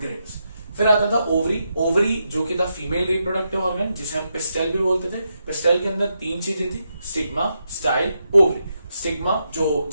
ग्रेन्स। फिर आता था ओवरी, ओवरी जो कि था फीमेल रिप्रोडक्टिव ऑर्गन, जिसे हम पिस्टल भी बोलते थे। पिस्टल के अंदर तीन चीजें थी, स्टिग्मा, स्टाइल, ओवरी। स्टिग्मा जो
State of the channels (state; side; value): inverted; both; correlation -0.83